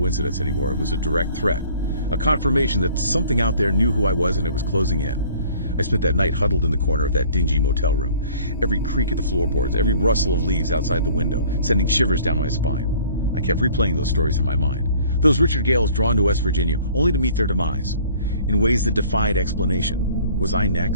anymore. It was a direct threat. A confirmation that something out there knew who I was and it was closing in. I spent that night huddled in the corner of that dingy motel room. Every creak of the floorboards, every rustle of leaves outside the window, sending shivers down my spine. I kept replaying those stories in my mind. Those Richard Gales drawn to West Virginia, only to meet their demise. In ways that defied explanation. Was I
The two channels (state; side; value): inverted; both; correlation -0.52